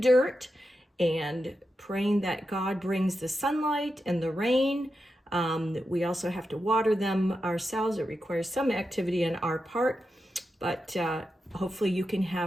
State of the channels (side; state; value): both; normal; correlation 0.89